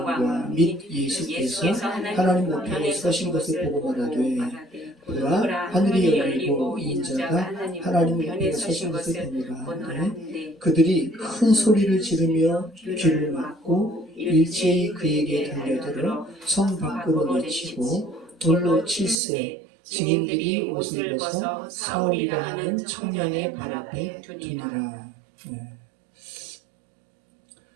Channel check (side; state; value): left; drops out; at 19.2 s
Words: 및 예수께서 하나님 우편에 서신 것을 보고 말하되 보라 하늘이 열리고 인자가 하나님 우편에 서신 것을 보노라. 그들이 큰 소리를 지르며 귀를 막고 일제히 그에게 달려들어 성 밖으로 내치고 돌로 칠세 증인들이 옷을 벗어 사울이라 하는 청년의 발 앞에 두니라. 네.